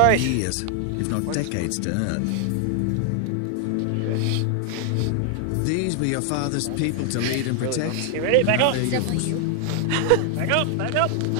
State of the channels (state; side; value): different; both; correlation 0.00